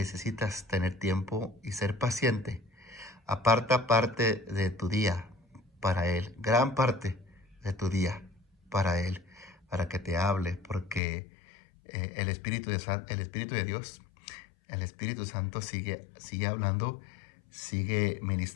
tener tiempo y ser paciente. Aparta parte de tu día para Él, gran parte de tu día para Él, para que te hable, porque el Espíritu de Dios, el Espíritu Santo sigue hablando, sigue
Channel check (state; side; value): drops out; right; at 11.0 s